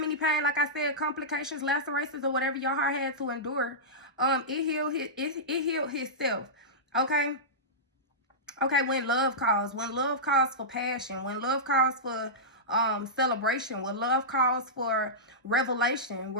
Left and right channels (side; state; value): both; normal; correlation -0.15